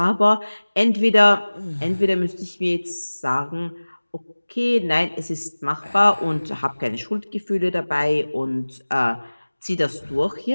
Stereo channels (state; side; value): inverted; both; correlation -1.00